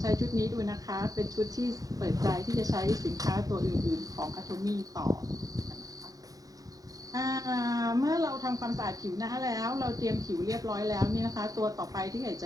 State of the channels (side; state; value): left; late; 0.17 ms